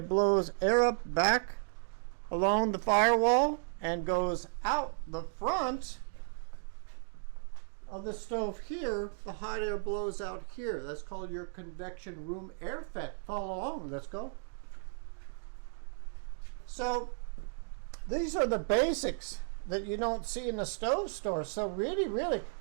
blows air up back along the firewall and goes out the front of the stove here. The hot air blows out here. That's called your convection room air vent. Follow along. Let's go. So these are the basics that you don't see in the stove store. So really,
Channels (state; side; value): silent; left; digital silence